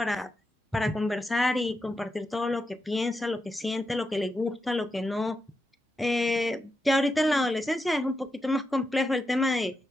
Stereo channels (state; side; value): normal; both; correlation 0.87